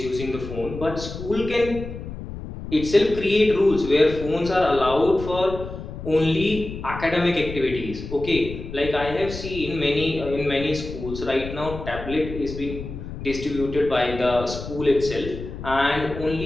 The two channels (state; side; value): noise; left; rumble, 10 dB below the sound